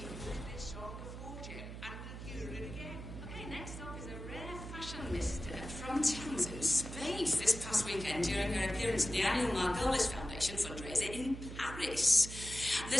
this song a fortune and we'll hear it again. Okay, next up is a rare fashion mister from Townsend Space this past weekend during her appearance at the annual Margolis Foundation fundraiser in Paris. The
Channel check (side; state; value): right; noise; hum, 10 dB below the sound